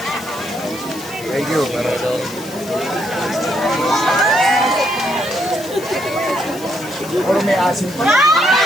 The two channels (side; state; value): left; noise; hiss, 17 dB below the sound